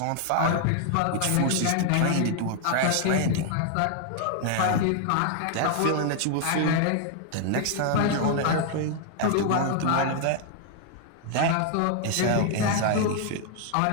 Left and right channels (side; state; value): both; different; correlation 0.00